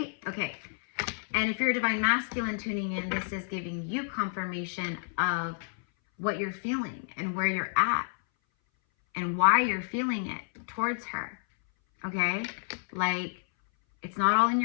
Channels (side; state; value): right; silent; 58 dB below the other